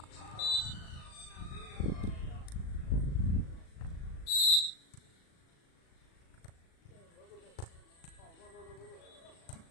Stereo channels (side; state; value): right; late; 37 ms